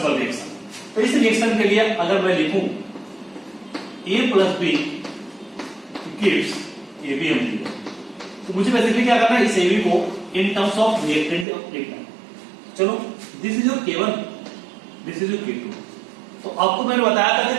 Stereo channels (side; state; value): left; drops out; at 11.5 s